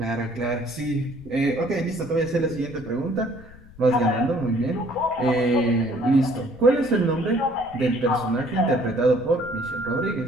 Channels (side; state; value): left; noise; rumble, 21 dB below the sound